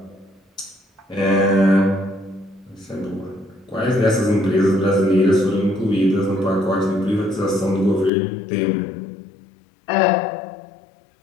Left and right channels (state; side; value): drops out; right; at 8.1 s